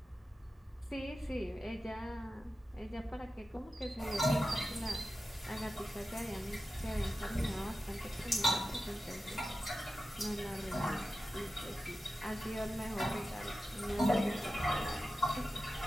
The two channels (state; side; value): normal; both; correlation 0.92